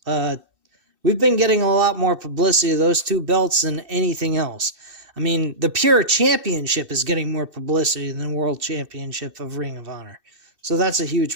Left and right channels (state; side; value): late; left; 2.6 ms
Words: We've been getting a lot more publicity of those two belts than anything else. I mean, the Pure Championship is getting more publicity than the World Championship of Ring of Honor. So that's a